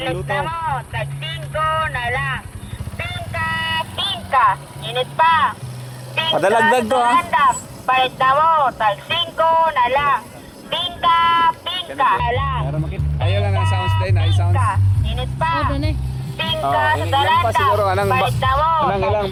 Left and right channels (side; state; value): both; identical; correlation 1.00